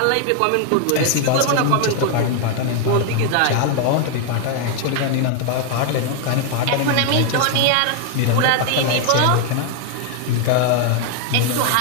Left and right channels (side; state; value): both; different; correlation 0.00